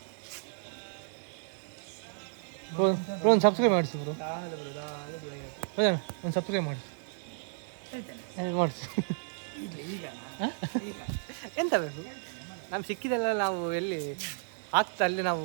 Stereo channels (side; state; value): left; silent; digital silence